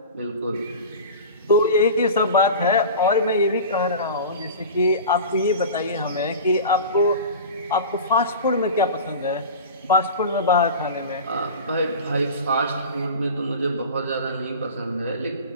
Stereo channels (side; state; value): both; inverted; correlation -0.33